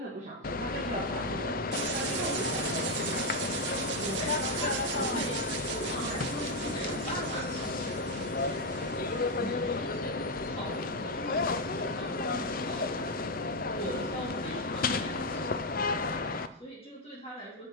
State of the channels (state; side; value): normal; both; correlation 0.03